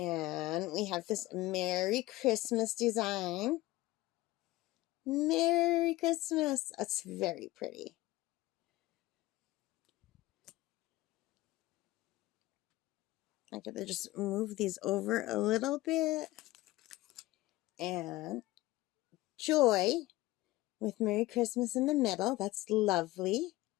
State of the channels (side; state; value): right; quieter; 18.7 dB